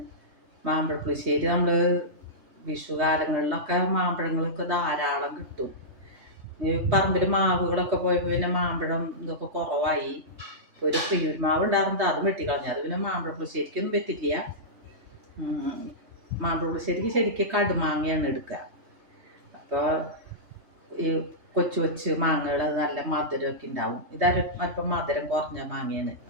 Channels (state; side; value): late; left; 3.2 ms